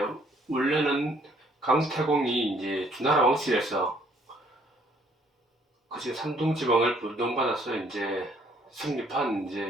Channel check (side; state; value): both; normal; correlation 0.63